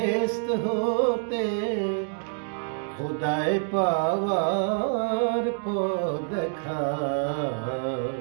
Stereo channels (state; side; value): silent; left; 60 dB below the other